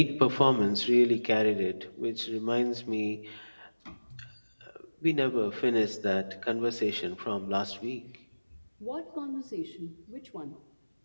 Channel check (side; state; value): both; inverted; correlation -1.00